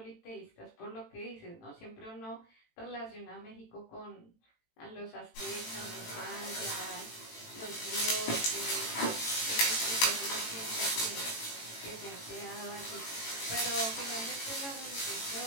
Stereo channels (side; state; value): right; late; 18 ms